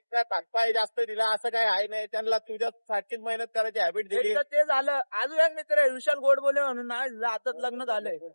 तात्पाय जास्त दिला असं काय आहे नाही त्यांना तुझ्या सारखीच मेहनत करायची हॅबिट दिली एक तर ते झालं अजून एक मित्र आहे विशाल गोडबोले म्हणून ना आता लग्न झालंय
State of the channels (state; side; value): inverted; both; correlation -1.00